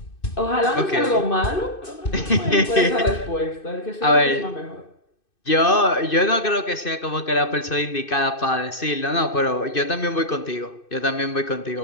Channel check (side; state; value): right; late; 2.6 ms